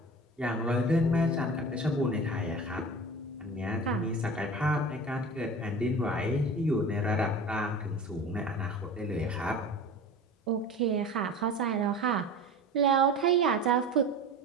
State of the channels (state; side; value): normal; both; correlation 0.35